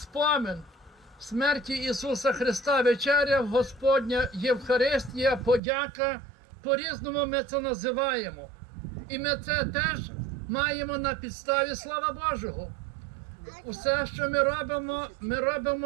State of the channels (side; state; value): left; drops out; at 5.6 s